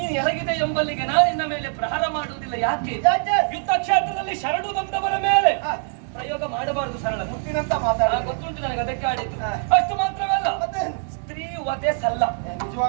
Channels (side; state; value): left; silent; 57 dB below the other